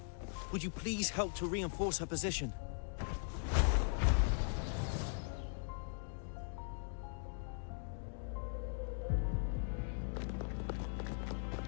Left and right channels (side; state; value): right; silent; digital silence